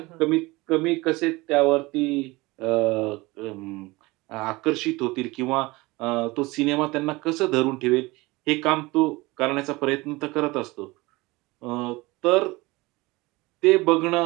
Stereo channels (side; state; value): left; quieter; 22.3 dB